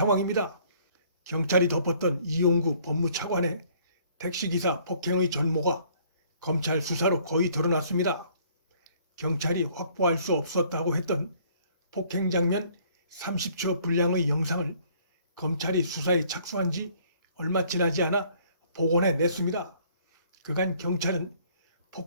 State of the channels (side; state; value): both; inverted; correlation -0.60